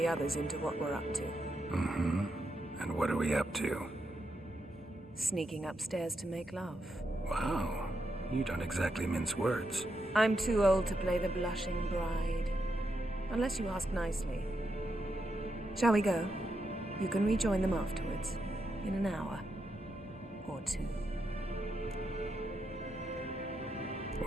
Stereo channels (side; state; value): both; normal; correlation 0.83